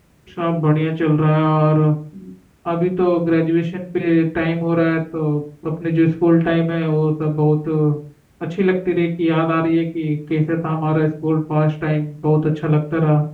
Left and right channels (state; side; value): identical; both; correlation 1.00